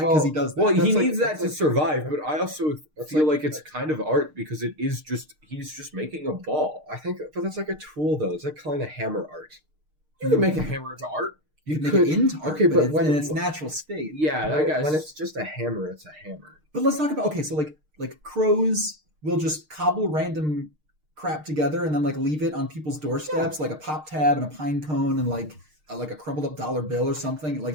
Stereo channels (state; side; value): late; left; 6.5 ms